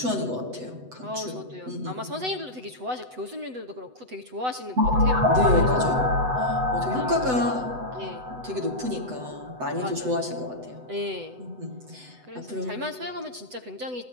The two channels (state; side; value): late; left; 8.0 ms